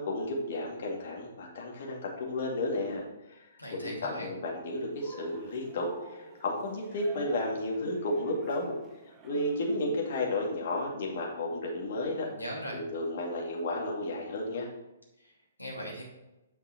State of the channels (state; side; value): inverted; both; correlation -0.54